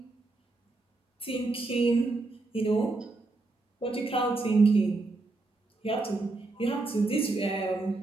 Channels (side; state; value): left; quieter; 3.3 dB